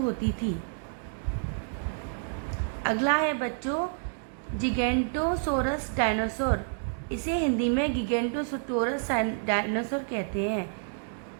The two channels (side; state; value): left; silent; digital silence